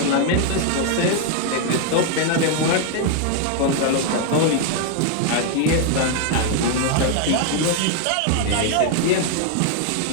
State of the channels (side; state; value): both; different; correlation 0.00